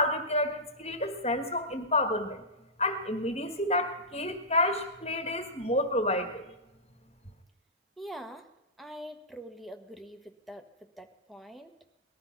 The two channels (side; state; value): both; normal; correlation -0.16